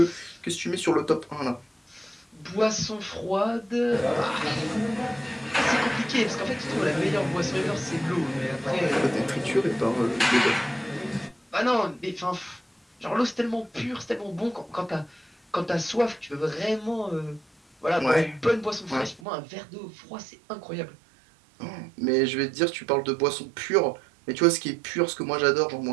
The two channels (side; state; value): left; drops out; at 19.2 s